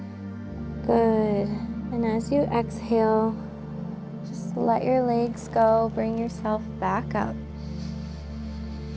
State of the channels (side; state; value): both; identical; correlation 1.00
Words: Good. And as you exhale, just let your legs go. Bring yourself back up.